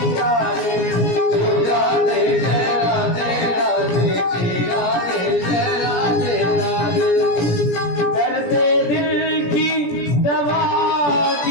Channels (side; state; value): right; late; 17 ms